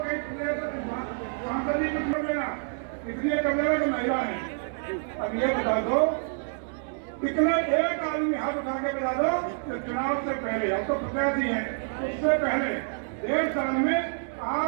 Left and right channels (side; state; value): left; silent; digital silence